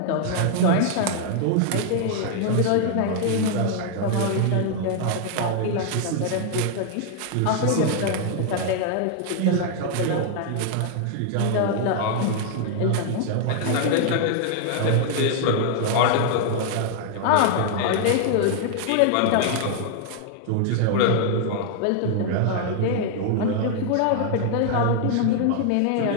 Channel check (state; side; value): different; both; correlation 0.00